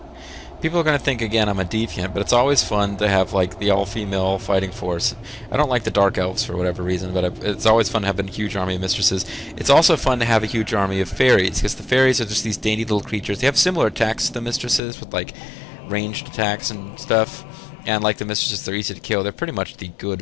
People are going to think, again, I'm a deviant, but it's always fun to have, like, the all-female fighting force. I don't like the Dark Elves for whatever reason, but it's always fun to have a huge army of mistresses. It's also fun to have a huge army of fairies, because the fairies are just these dainty little creatures. They have similar attacks to the mistresses, with, like, ranged attacks and stuff. And like the mistresses, they're easy to kill. They're pretty much the good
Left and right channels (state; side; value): drops out; right; at 14.8 s